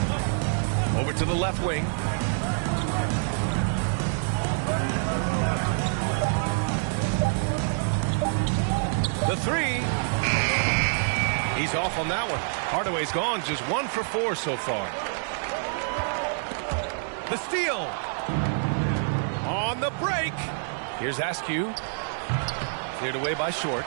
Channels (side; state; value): left; silent; digital silence